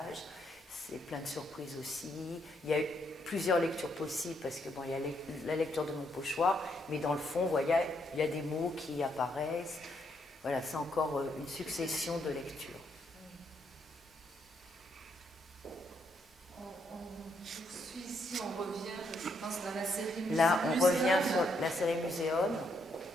C'est plein de surprises aussi. Il y a plusieurs lectures possibles parce que bon, il y a la lecture de mon pochoir, mais dans le fond, vous voyez, il y a des mots qui apparaissent. Voilà, c'est encore une succession de lectures. On poursuit ici, on revient, je pense, dans la série Muséum. Là, on revient sur la série Muséum.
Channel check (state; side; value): normal; both; correlation 0.75